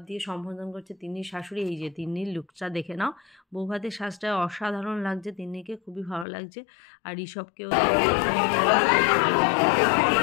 দিয়ে সম্বোধন করছে তিন্নির শাশুড়ি। এই যে তিন্নির লুকটা দেখে নাও, বৌভাতের সাজটা অসাধারণ লাগছে, তিন্নিকে খুবই ভালো লাগছে। আর ঋষভকেও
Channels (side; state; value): right; drops out; at 6.2 s